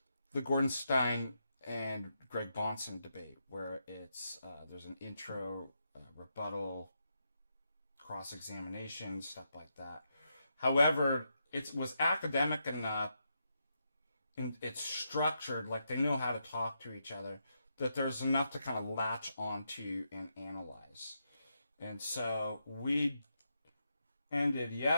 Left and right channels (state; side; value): inverted; both; correlation -0.83